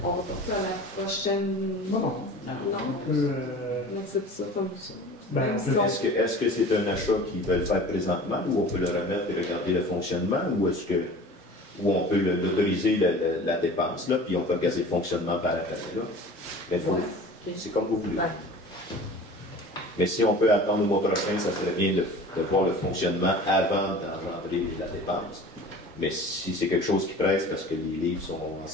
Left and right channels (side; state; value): both; normal; correlation 0.41